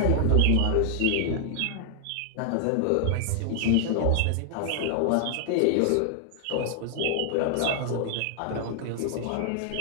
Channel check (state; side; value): different; both; correlation -0.01